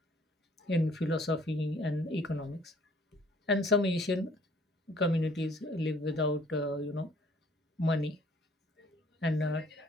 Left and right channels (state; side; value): normal; both; correlation 0.58